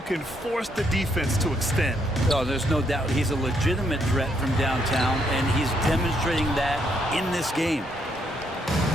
can force the defense to extend. Oh, there's no doubt he's a legitimate threat from downtown, and he's demonstrating that in this game.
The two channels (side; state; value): both; normal; correlation 0.74